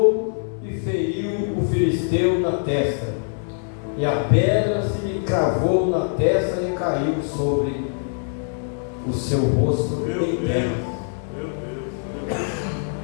e feriu o filisteu na testa. E a pedra se lhe cravou na testa e caiu sobre o seu rosto em terra.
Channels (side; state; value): right; silent; digital silence